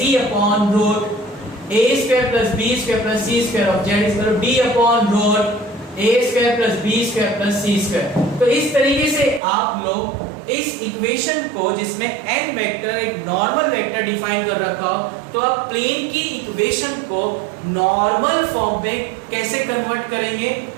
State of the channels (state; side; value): drops out; left; at 9.4 s